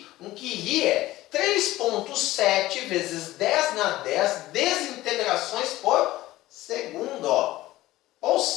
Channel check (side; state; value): right; quieter; 16.7 dB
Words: Um Curie é 3,7 vezes 10 na 10 desintegrações por segundo. Ou